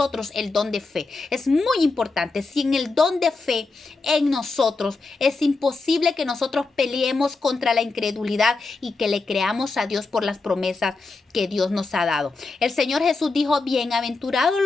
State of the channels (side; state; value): right; quieter; 3.8 dB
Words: el don de fe. Es muy importante. Sin el don de fe en nosotros, es imposible que nosotros peleemos contra la incredulidad y que le creamos a Dios por las promesas que Dios nos ha dado. El Señor Jesús dijo, bienaventurados